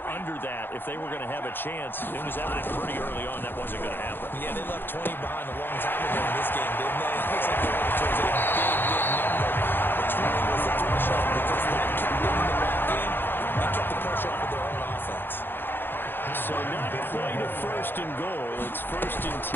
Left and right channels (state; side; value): late; right; 0.099 ms